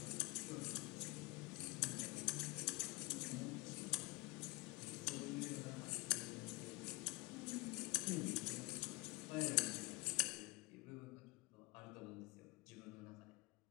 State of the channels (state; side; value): quieter; right; 25.6 dB